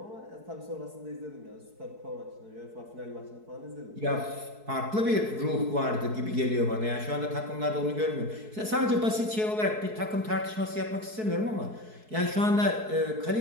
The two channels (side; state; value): left; late; 4.6 ms